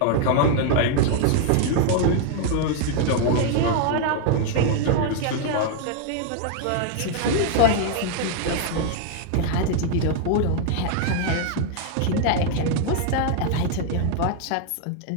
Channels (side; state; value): both; different; correlation 0.00